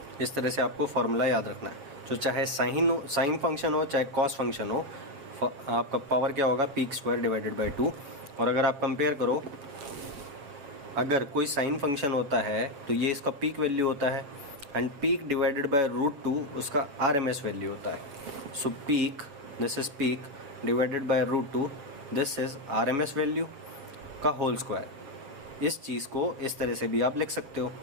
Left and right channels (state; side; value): late; left; 7.0 ms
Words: इस तरह से आपको formula याद रखना है, तो चाहे साइन फंक्शन हो चाहे कॉस फंक्शन हो, आपका पावर क्या होगा, पीक स्क्वायर डिवाइडेड बाय 2। और अगर आप कंपेयर करो, अगर कोई साइन फंक्शन होता है तो ये इसका पीक वैल्यू होता है, एंड पीक डिवाइडेड बाय √2 उसका RMS वैल्यू होता है। So peak, this is peak divided by √2, this is RMS value का होल स्क्वायर। इस चीज़ को इस तरह से भी आप लिख सकते हो,